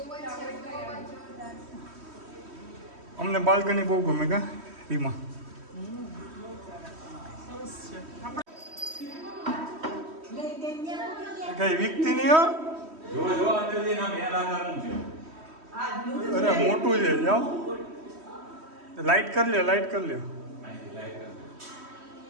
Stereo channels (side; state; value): left; late; 3.1 ms